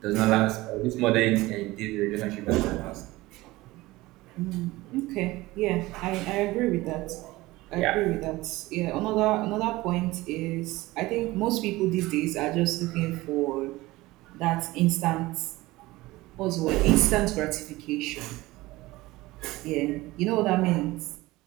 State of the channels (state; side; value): quieter; left; 19.4 dB